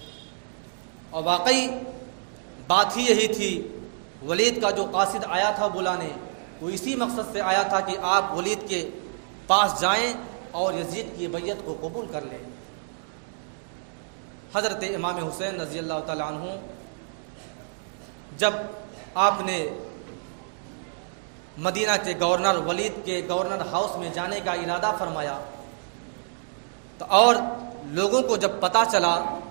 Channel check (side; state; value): left; silent; digital silence